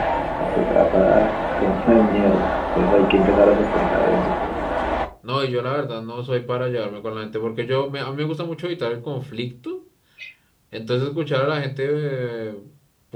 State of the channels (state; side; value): identical; both; correlation 1.00